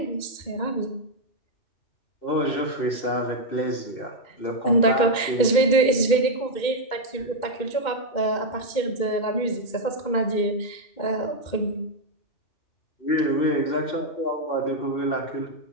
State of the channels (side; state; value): right; late; 2.1 ms